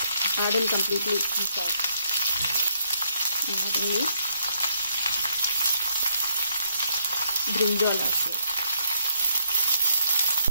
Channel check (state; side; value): inverted; both; correlation -0.72